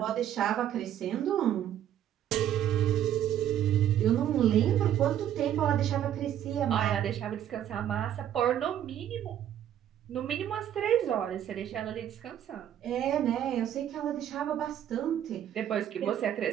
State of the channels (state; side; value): quieter; left; 10.7 dB